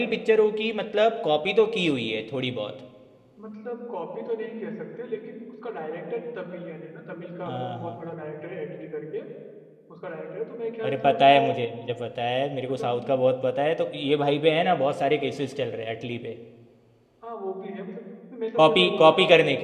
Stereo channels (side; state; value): both; identical; correlation 1.00